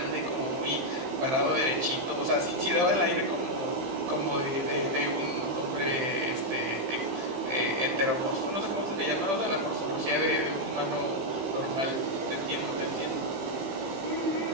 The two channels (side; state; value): left; late; 15 ms